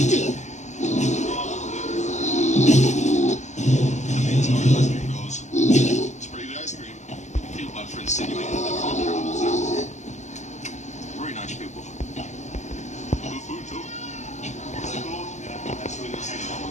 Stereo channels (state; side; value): late; right; 0.34 ms